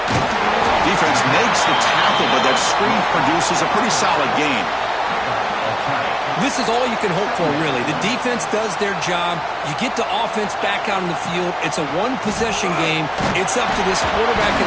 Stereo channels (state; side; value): identical; both; correlation 1.00